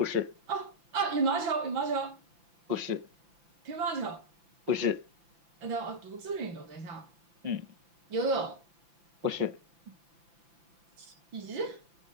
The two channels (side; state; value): left; late; 5.9 ms